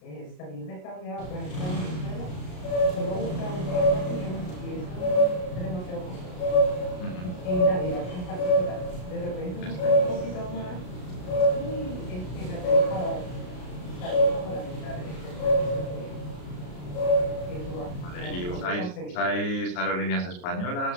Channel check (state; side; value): late; right; 33 ms